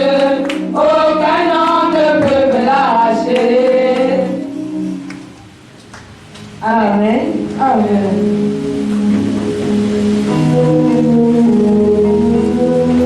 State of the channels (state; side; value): identical; both; correlation 1.00